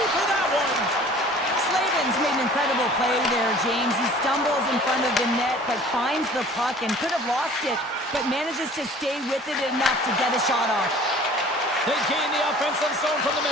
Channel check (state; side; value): normal; both; correlation 0.48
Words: for that one. Slavin's made an incredible play there, James. He stumbles in front of the net, but finds the puck and could have lost it, but manages to stay with it enough to get a shot off. They gain the offensive zone from the